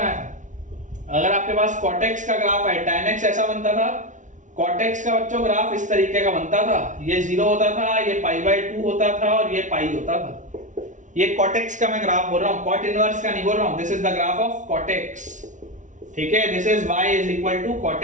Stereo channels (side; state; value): left; late; 0.37 ms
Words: था। अगर आपके पास cot x का ग्राफ है, tan x ऐसा बनता था, cot x का बच्चों ग्राफ इस तरीके का बनता था, ये 0 होता था, ये π/2 होता था और ये π होता था। ये cot x का मैं ग्राफ बोल रहा हूं, cot इनवर्स का नहीं बोल रहा हूं। This is the graph of cot x, ठीक है। This is y is equal to cot